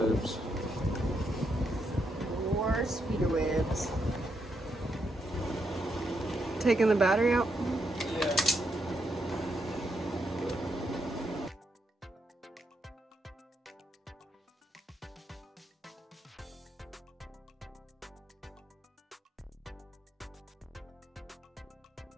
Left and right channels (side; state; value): both; normal; correlation 0.79